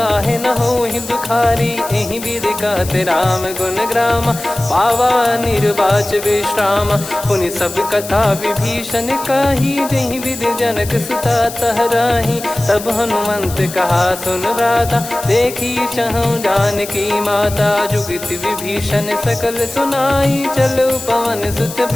न होहि दुखारी। एहि विधि कहते राम गुण ग्राम पावा निर्वाच विश्राम। पुनि सब कथा विभीषण काही जहि विधि जनक सुता तहराही। तब हनुमंत कहा सुन भ्राता देखी चहु जानकी माता। जुगित विभीषण सकल सुनाई चलो पवन सुत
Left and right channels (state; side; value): noise; left; hiss, 12 dB below the sound